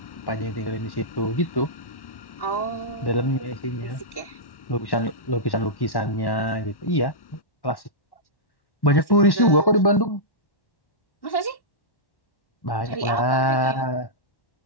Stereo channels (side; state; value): right; late; 1.1 ms